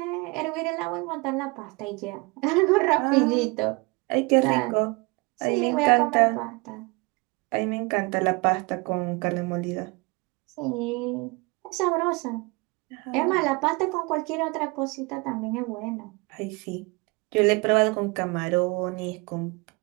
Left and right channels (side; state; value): left; quieter; 27.1 dB